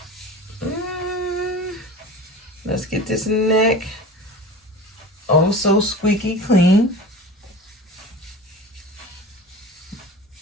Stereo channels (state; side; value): normal; both; correlation 0.35